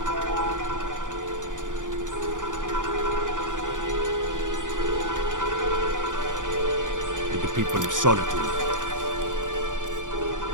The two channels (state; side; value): late; left; 0.87 ms